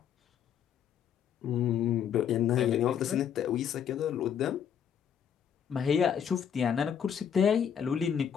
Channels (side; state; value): right; quieter; 8.4 dB